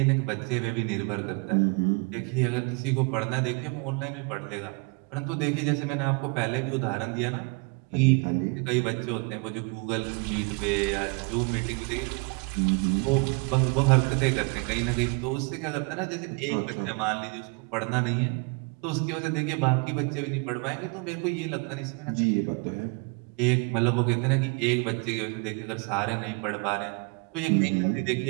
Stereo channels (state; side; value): quieter; left; 31.4 dB